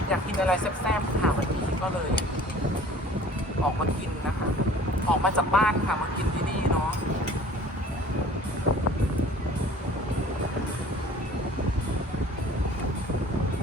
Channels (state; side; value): normal; both; correlation 0.48